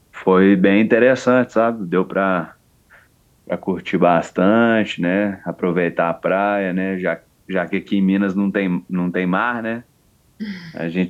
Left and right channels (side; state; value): both; identical; correlation 1.00